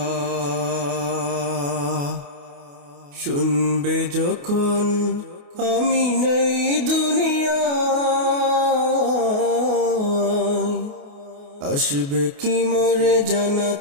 শুনবে যখন আমি নেই দুনিয়ায়, আসবে কি মোরে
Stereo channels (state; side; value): late; left; 28 ms